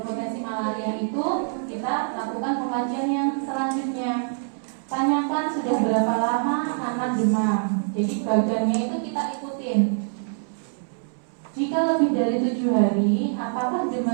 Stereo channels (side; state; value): left; silent; 62 dB below the other